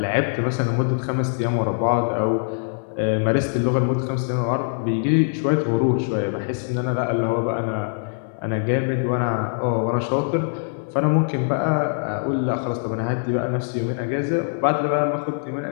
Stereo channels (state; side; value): silent; right; digital silence